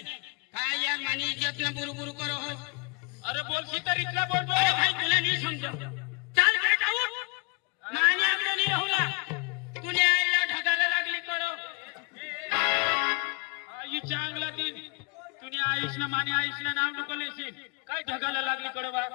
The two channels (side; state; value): right; quieter; 33.7 dB